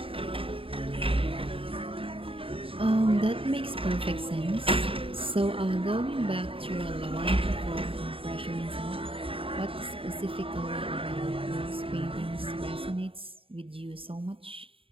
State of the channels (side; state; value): left; late; 0.26 ms